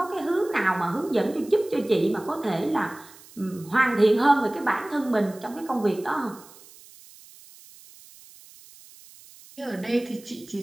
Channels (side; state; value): right; noise; hiss, 22 dB below the sound